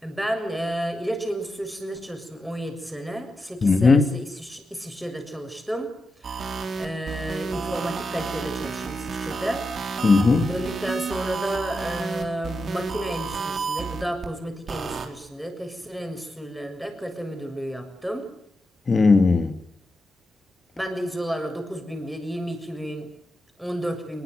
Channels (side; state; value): both; normal; correlation 0.88